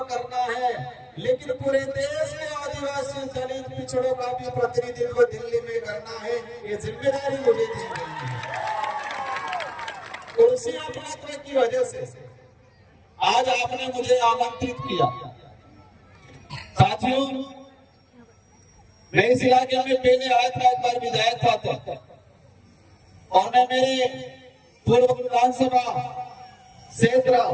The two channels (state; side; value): identical; both; correlation 1.00